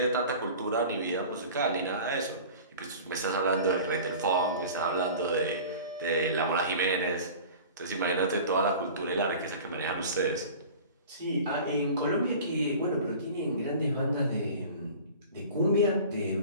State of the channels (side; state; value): both; inverted; correlation -0.40